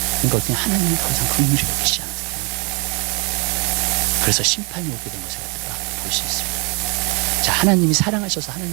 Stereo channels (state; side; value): quieter; left; 31.6 dB